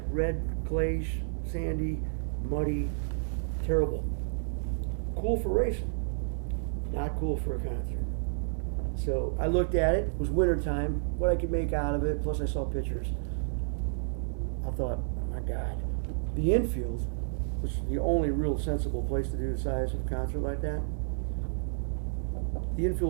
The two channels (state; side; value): silent; left; 57 dB below the other